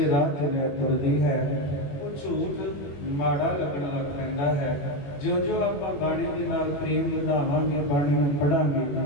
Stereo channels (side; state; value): right; late; 21 ms